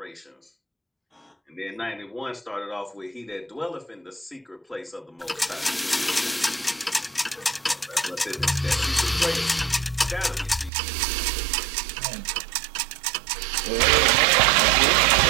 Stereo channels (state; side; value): drops out; left; at 10.7 s